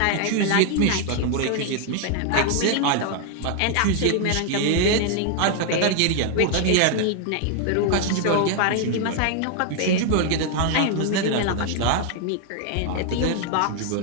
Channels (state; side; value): different; both; correlation 0.00